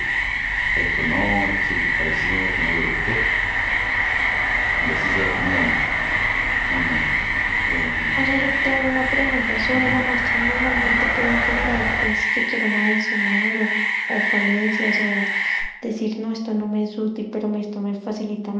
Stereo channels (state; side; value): identical; both; correlation 1.00